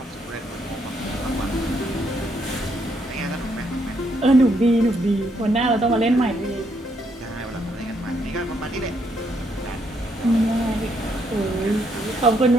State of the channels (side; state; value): both; normal; correlation 0.74